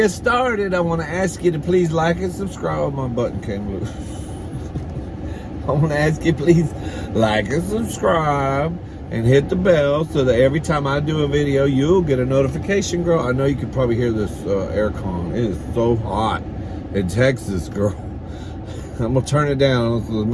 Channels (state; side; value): identical; both; correlation 1.00